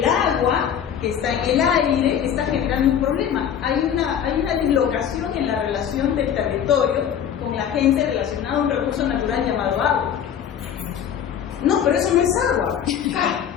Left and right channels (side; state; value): right; quieter; 8.9 dB